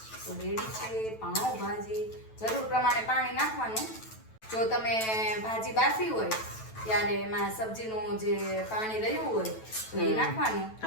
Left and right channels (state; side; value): late; right; 9.1 ms